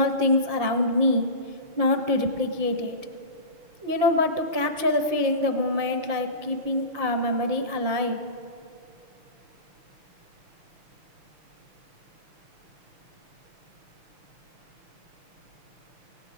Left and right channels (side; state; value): left; late; 5.8 ms